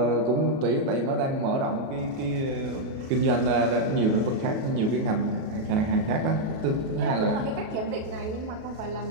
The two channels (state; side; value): late; left; 37 ms